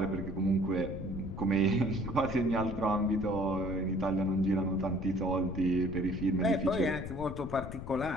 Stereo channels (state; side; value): noise; left; rumble, 9 dB below the sound